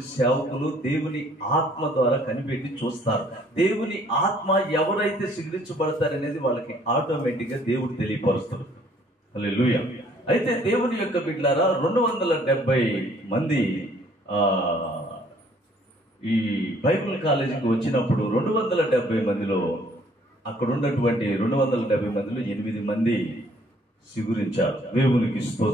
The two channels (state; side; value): normal; both; correlation 0.61